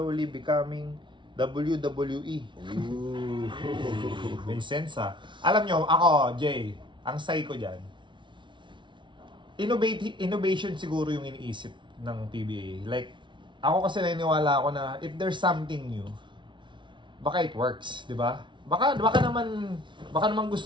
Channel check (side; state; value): left; late; 0.24 ms